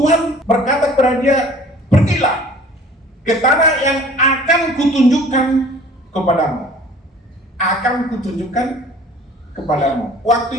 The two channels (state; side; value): normal; both; correlation 0.49